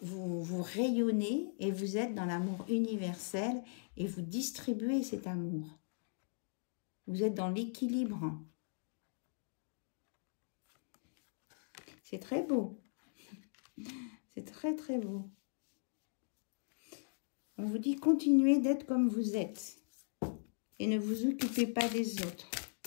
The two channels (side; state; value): right; silent; digital silence